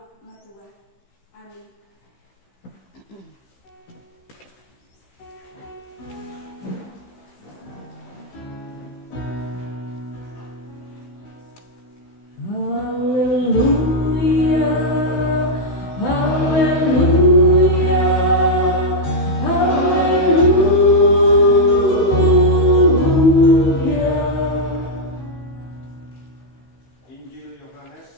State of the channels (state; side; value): late; right; 15 ms